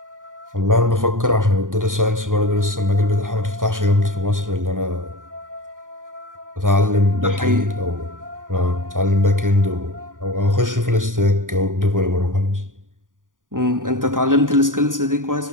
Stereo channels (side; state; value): left; late; 0.89 ms